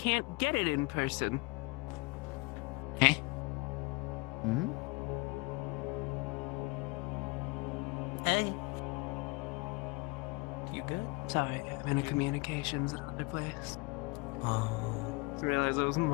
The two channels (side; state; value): right; quieter; 27.0 dB